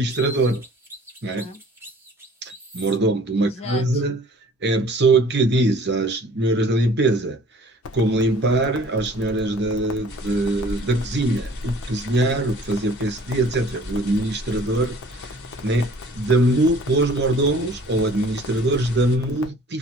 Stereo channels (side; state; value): both; normal; correlation 0.51